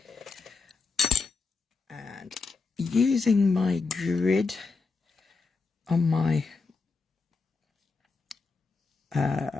And using my grid on my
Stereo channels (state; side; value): quieter; right; 4.3 dB